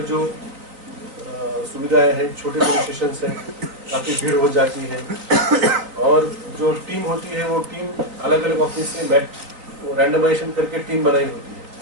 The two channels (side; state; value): left; late; 3.8 ms